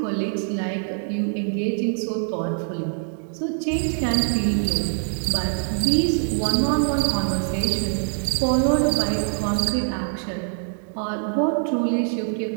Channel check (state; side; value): silent; left; digital silence